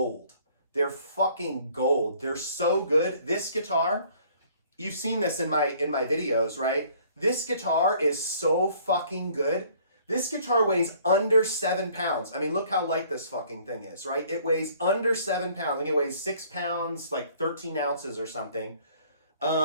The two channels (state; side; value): inverted; both; correlation -0.57